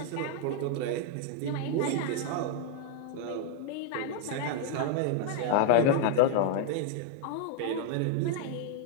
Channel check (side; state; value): both; different; correlation 0.00